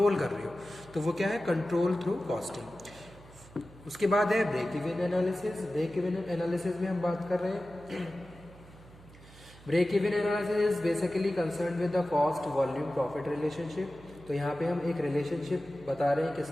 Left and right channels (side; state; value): right; noise; hum, 21 dB below the sound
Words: कर रहे हो। तो वो क्या है, कंट्रोल थ्रू कॉस्टिंग। उसके बाद है break even analysis. Break even analysis में हम बात कर रहे हैं, break even analysis is basically concern with the cost volume profit relationship. तो यहाँ पे हम एक रिलेशनशिप बता रहे हैं